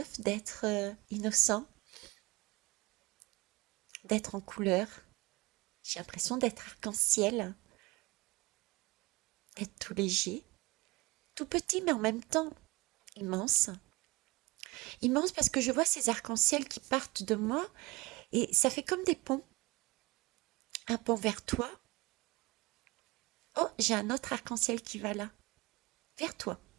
d'être innocent, d'être en couleur. J'ai l'impression d'être arc-en-ciel, d'être tout léger, tout petit mais en même temps immense. Immense parce que je vois ces arcs-en-ciel qui partent de moi et ça fait comme des ponts. Un pont vers toi. Oh, j'ai un autre arc-en-ciel qui va là, vers toi.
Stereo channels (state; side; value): quieter; left; 23.0 dB